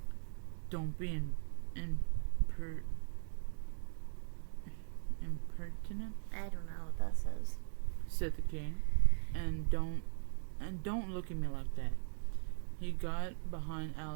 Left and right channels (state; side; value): silent; left; digital silence